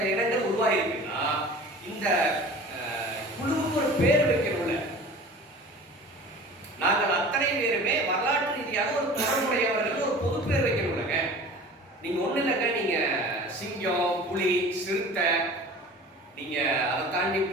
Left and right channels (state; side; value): normal; both; correlation 0.41